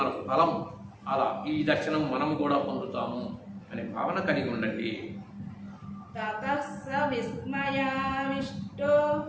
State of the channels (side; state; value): both; identical; correlation 1.00